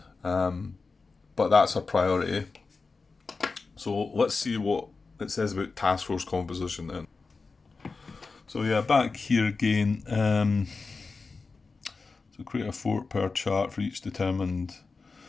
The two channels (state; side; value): quieter; right; 4.2 dB